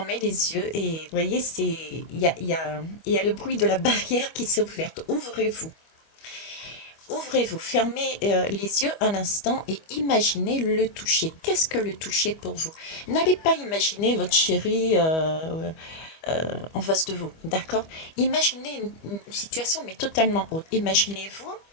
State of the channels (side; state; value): right; late; 25 ms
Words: les yeux et vous voyez, il y a le bruit de la barrière qui s'est ouverte. Ouvrez-vous. Ouvrez-vous, fermez les yeux un instant et imaginez le toucher. Qu'est-ce que le toucher pour vous? N'allez pas imaginer votre chéri en face de vous, d'accord? Imaginez une situation mais totalement autre. Imaginez-vous,